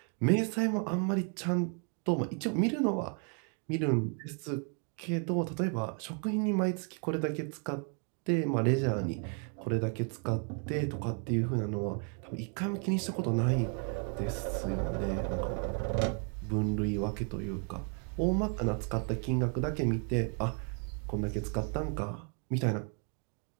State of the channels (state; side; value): quieter; left; 39.9 dB